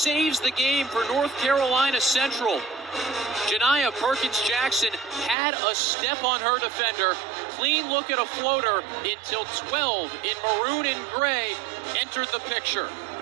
the game for North Carolina Central. Janiyah Perkins-Jackson had a step on her defender. Clean look at a floater until 12 in maroon and gray entered the picture.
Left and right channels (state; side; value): drops out; left; at 5.4 s